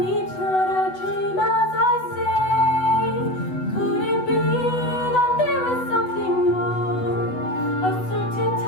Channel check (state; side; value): late; right; 8.0 ms